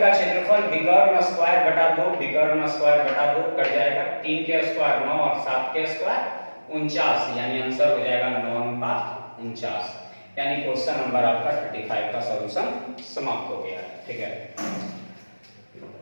क्षेत्रफल विकर्ण स्क्वायर बटा 2, विकर्ण स्क्वायर बटा 2 कट जाएगा, 3 के स्क्वायर 9 और 7 के स्क्वायर 49, यानी आंसर हो जाएगा 9:49। यानी क्वेश्चन नंबर आपका 35 का सॉल्यूशन समाप्त हो गया है। ठीक है,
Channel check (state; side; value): inverted; both; correlation -1.00